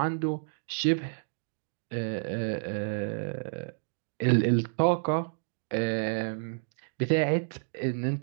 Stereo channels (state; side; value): silent; left; digital silence